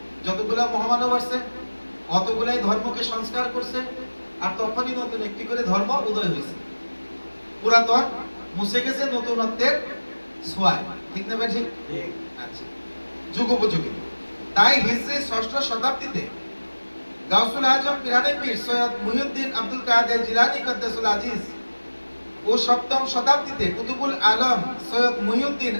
যতগুলা মহামানব আসছে অতগুলাই ধর্মকে সংস্কার করছে, আর তখনই নতুন একটি করে ধর্ম উদয় হয়েছে। পুরাতন মুছে গেছে নতুনত্বের ছোঁয়ায়। ঠিক না? ঠিক। আচ্ছা, যুগোপযোগী। তাই হিজরি 6ষ্ঠ শতাব্দীতে গাউসুল আজম পিরানে পীর সৈয়দ মুহিউদ্দিন আব্দুল কাদের জিলানী কদ্দাসুল আজিজ ও 7ম শতাব্দীতে কুতুবুল আলম সৈয়দ মুহিউদ্দিন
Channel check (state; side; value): inverted; both; correlation -1.00